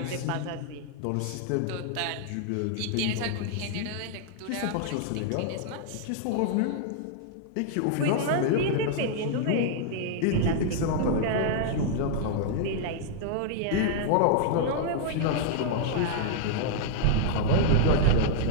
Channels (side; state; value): both; different; correlation -0.01